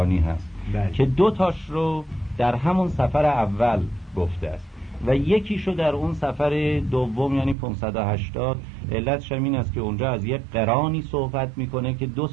هست که 2 تاش رو در همون سفر اول گفته است و یکیشو در اون سفر دوم یعنی 580. علتش این است که اونجا از یک قرانی صحبت میکنه که 2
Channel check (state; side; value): drops out; left; at 7.6 s